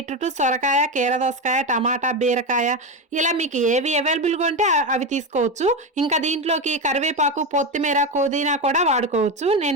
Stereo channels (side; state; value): both; normal; correlation 0.15